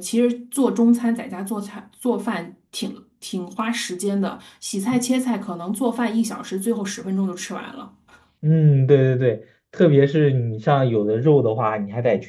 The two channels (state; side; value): identical; both; correlation 1.00